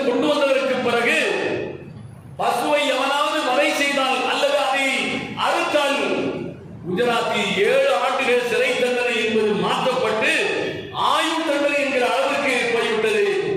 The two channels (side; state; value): both; identical; correlation 1.00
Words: கொண்டு வந்ததற்கு பிறகு பசுவை எவனாவது வதை செய்தால் அல்லது அதை அறுத்தால் குஜராத்தில் 7 ஆண்டுகள் சிறை தண்டனை என்பது மாற்றப்பட்டு ஆயுள் தண்டனை என்கிற அளவிற்கு போய்விட்டது.